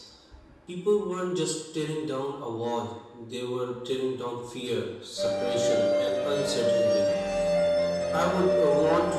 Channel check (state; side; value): identical; both; correlation 1.00